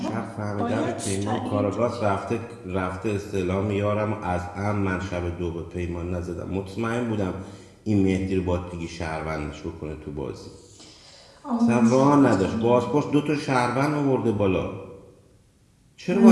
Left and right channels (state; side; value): identical; both; correlation 1.00